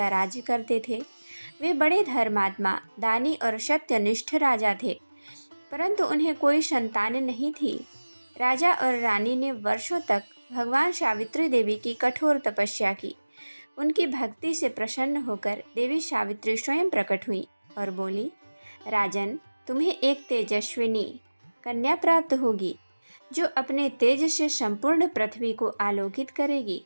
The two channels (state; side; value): inverted; both; correlation -1.00